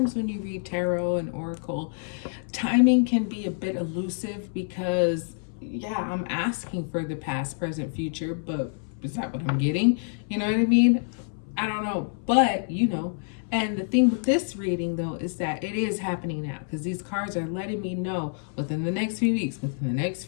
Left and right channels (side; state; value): right; silent; 59 dB below the other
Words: when you read tarot and oracle, timing can be a bit elusive, because yeah, I'm asking for the past, present, future, but is that what I'm getting? You know what I mean? I don't know, but you know. And the thing with this reading, though, is that it is happening now, because these cards are letting me know within the next few weeks, within the next